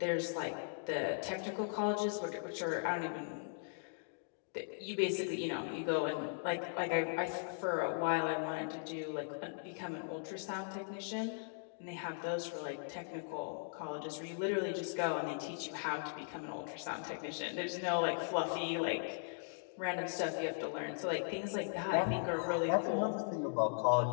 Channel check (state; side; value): silent; right; digital silence